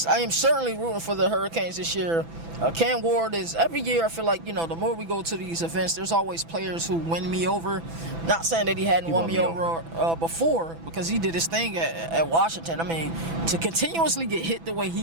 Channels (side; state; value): left; late; 6.0 ms